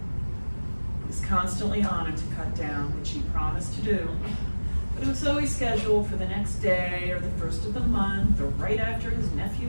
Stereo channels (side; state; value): both; inverted; correlation -1.00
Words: He was constantly on him to cut down, which he promised to do. But it was always scheduled for the next day or the first of the month or right after his